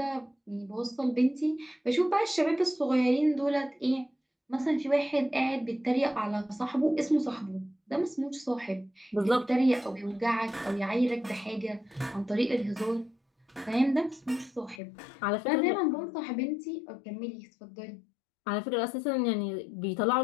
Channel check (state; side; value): drops out; right; at 14.8 s